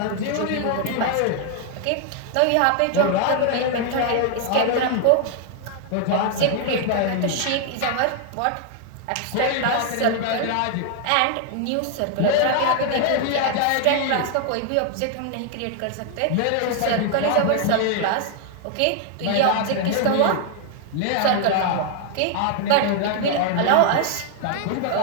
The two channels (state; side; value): different; both; correlation 0.00